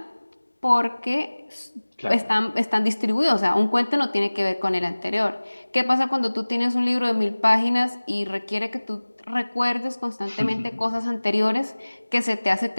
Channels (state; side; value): inverted; both; correlation -1.00